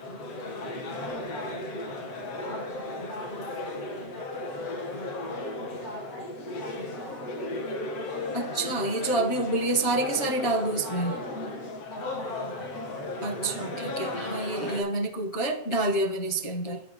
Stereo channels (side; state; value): right; late; 7.5 ms